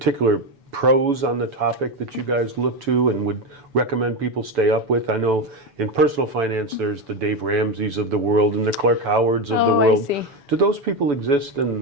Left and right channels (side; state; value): left; late; 7.0 ms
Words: pros on the topic that you guys look to and would recommend people stay up with? I know in personal finance there's the Dave Ramseys of the world and the Clark Howards of the world. I see. Do those people exist